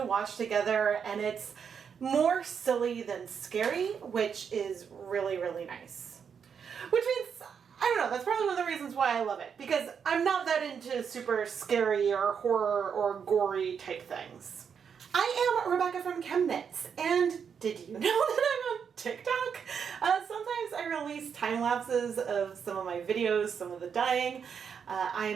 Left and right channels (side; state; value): left; quieter; 7.0 dB